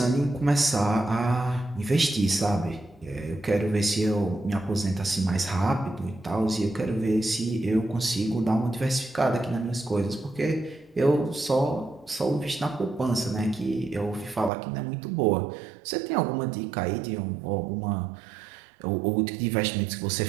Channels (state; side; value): drops out; left; at 14.5 s